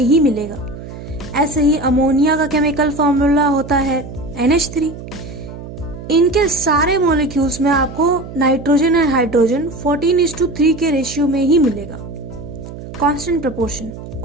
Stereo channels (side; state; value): right; noise; hum, 12 dB below the sound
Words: मिलेगा. ऐसे ही अमोनिया का केमिकल फॉर्मूला होता है NH3. इनके सारे मॉलिक्यूल्स में आपको नाइट्रोजन एंड हाइड्रोजन 14:3 के रेशियो में ही मिलेगा. Constant proportion